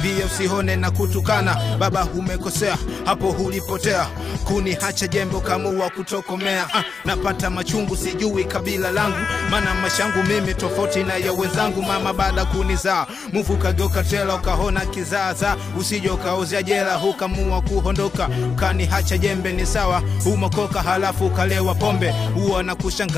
usihone na kutukana. Baba umekosea hapo ulipotea. Kuniacha jembe kamua kutokomea. Napata machungu sijui kabila langu. Maana mashangu mimi tofauti na ya wenzangu. Mama baada kunizaa mufu kageuka tela ukahona kizaza. Usije ukaozea jela ukamua kuondoka. Ukaniacha jembe ni sawa umokoka halafu ukalewa pombe. Huwa na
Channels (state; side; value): quieter; right; 5.2 dB